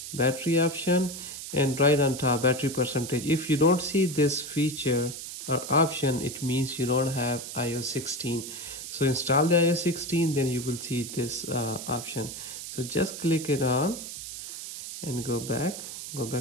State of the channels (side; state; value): right; noise; hiss, 9 dB below the sound